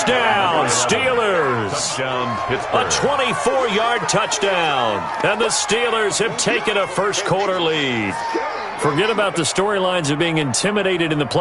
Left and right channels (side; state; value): both; identical; correlation 1.00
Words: Steelers. Touchdown, Pittsburgh. A 24-yard touchdown. And the Steelers have taken a first-quarter lead. Forget about the storylines of being intimidated in the